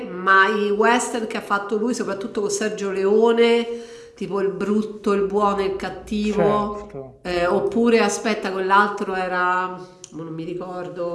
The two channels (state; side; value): identical; both; correlation 1.00